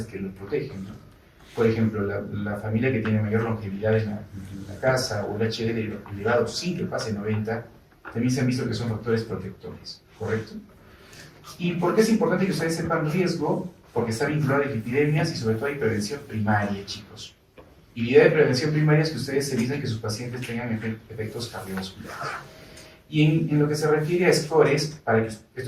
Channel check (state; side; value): identical; both; correlation 1.00